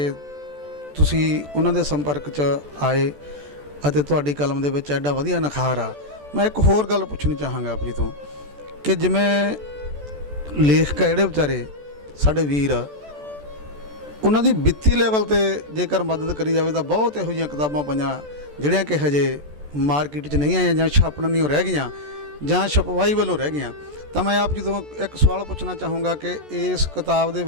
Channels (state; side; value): late; left; 14 ms